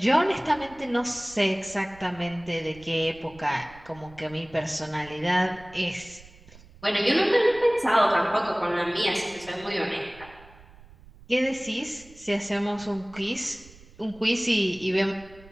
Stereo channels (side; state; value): right; noise; rumble, 23 dB below the sound